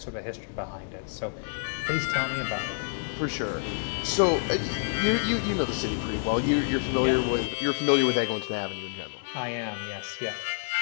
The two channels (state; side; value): silent; right; digital silence